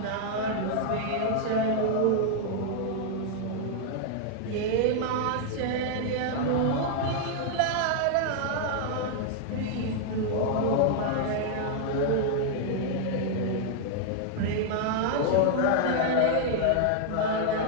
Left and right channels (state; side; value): different; both; correlation -0.01